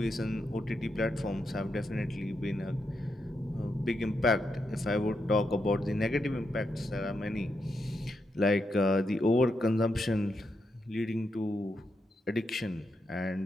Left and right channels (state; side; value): normal; both; correlation 0.83